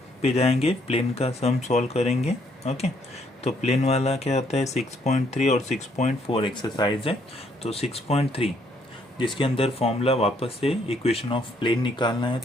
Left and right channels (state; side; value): normal; both; correlation 0.68